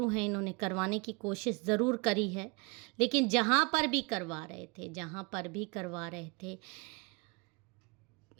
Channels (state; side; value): quieter; left; 29.4 dB